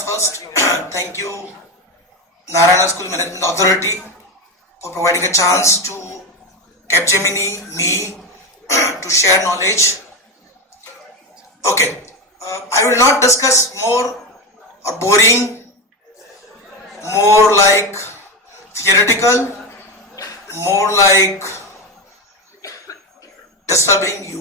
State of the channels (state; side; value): normal; both; correlation 0.17